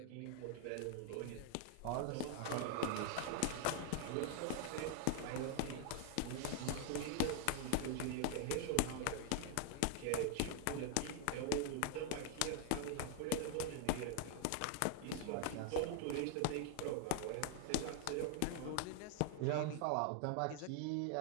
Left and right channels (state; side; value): different; both; correlation 0.00